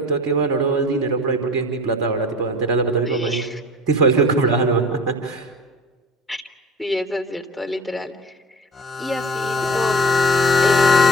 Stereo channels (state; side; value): normal; both; correlation 0.39